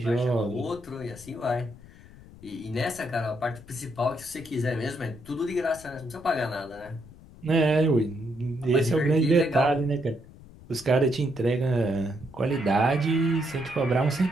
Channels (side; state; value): left; noise; rumble, 20 dB below the sound